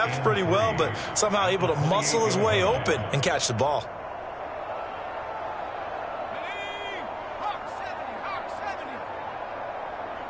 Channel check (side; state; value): both; identical; correlation 1.00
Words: pretty well, but somehow able to muscle his way open and catch the ball.